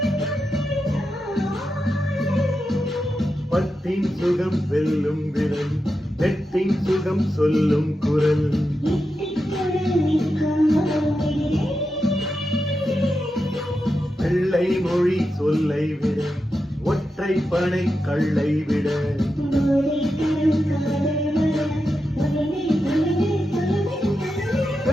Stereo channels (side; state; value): both; normal; correlation 0.88